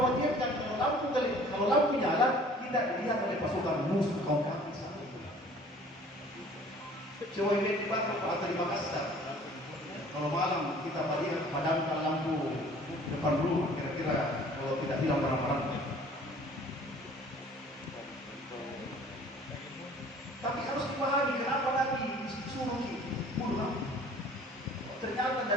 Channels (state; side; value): normal; both; correlation 0.51